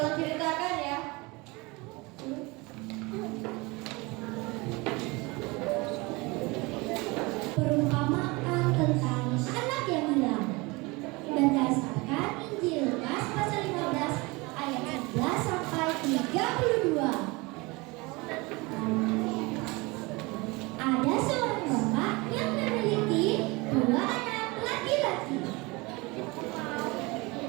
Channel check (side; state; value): left; quieter; 24.9 dB